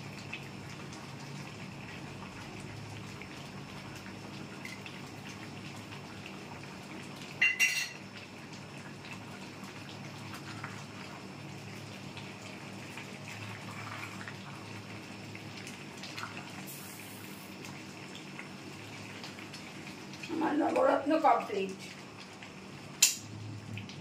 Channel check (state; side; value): identical; both; correlation 1.00